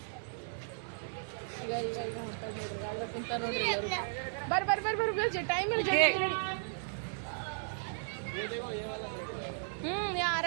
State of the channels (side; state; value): left; silent; 54 dB below the other